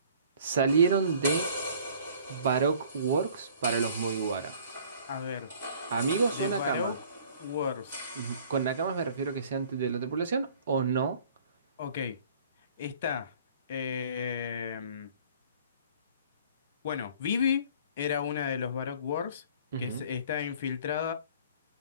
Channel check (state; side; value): inverted; both; correlation -0.53